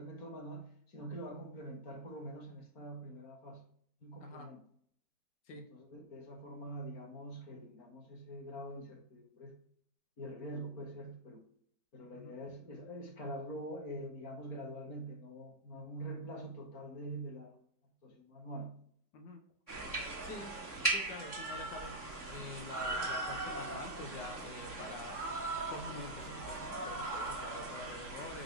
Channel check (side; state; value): right; late; 3.6 ms